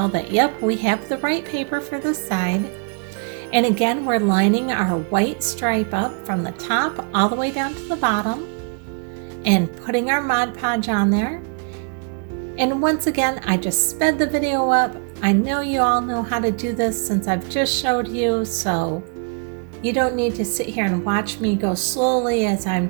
that, yep, we have the right paper for this side. And again, we're lining our white stripe up from the top all the way down to the bottom and putting our Mod Podge on there. And once again, I just sped the video up. I know you all know how to do this since I've just showed you, so you don't need to sit here and watch me go slowly as I'm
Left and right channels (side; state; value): left; quieter; 39.7 dB